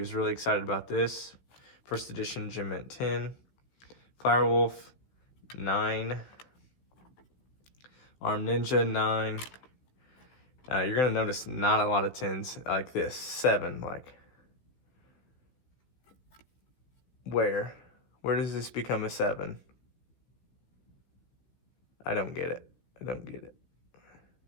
really excited about this. First edition Gem Mint 10. Firewolf 9. Arm Ninja 9. You're gonna notice not a lot of 10s like this. 7, like. Where does this become a 7? I don't get it. I don't get it.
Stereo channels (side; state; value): right; late; 15 ms